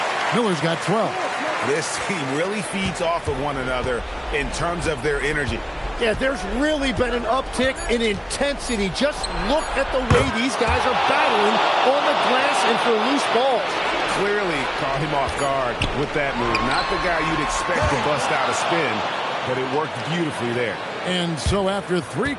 Miller's got 12. This team really feeds off of one another in terms of their energy. Yeah, there's really been an uptick in intensity. Just look at the way these guys are battling on the glass and for loose balls. Clearly caught him off guard with that move. Not the guy you'd expect to bust out a spin, but it worked beautifully there. And so after 3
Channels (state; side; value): identical; both; correlation 1.00